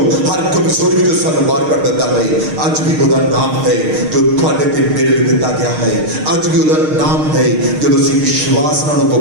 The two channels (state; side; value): late; left; 6.5 ms